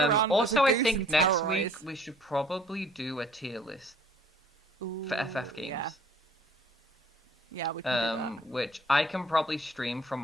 Also, as a I goose think and next terrorize. week we should probably do a tier list for FF games. Yeah. Yeah, we can do that. Which I can probably stream from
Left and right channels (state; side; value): normal; both; correlation 0.56